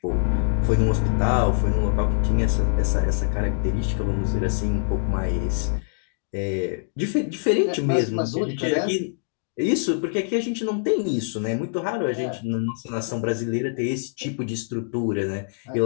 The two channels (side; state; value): right; silent; digital silence